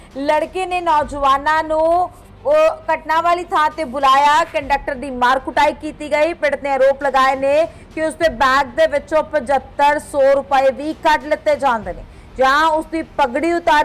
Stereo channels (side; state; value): both; identical; correlation 1.00